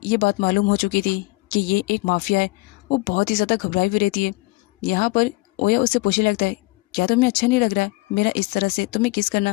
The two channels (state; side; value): quieter; right; 23.1 dB